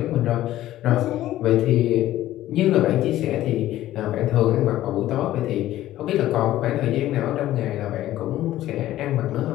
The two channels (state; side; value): quieter; right; 14.3 dB